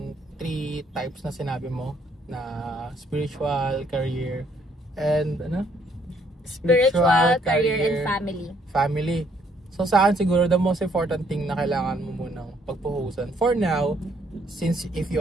3 types na sinabi mo, na spiritual, career, and Spiritual, career, and family. So sa akin siguro the most important thing na kailangan mo munang pagpuhusan for now, since if you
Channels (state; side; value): normal; both; correlation 0.67